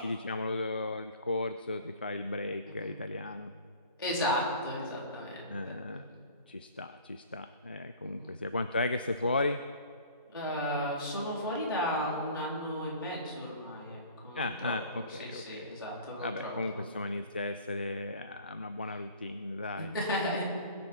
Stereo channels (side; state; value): both; inverted; correlation -0.46